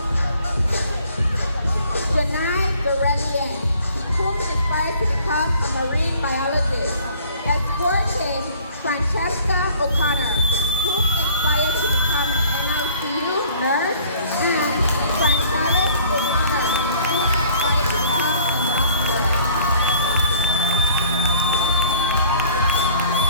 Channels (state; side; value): inverted; both; correlation -0.54